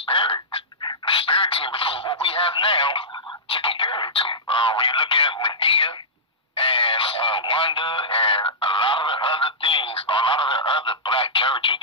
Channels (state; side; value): normal; both; correlation -0.16